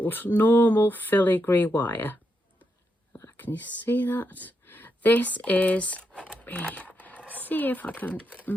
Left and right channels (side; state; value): both; normal; correlation 0.82